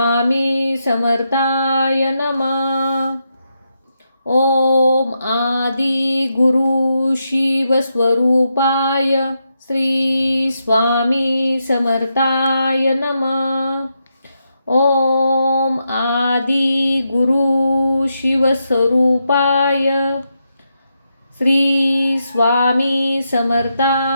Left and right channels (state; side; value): inverted; both; correlation -0.83